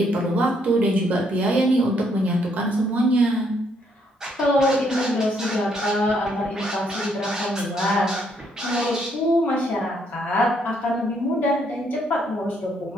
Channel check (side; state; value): both; normal; correlation 0.71